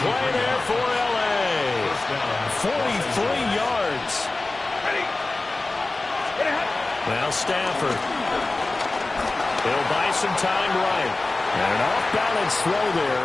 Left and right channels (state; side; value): quieter; right; 3.1 dB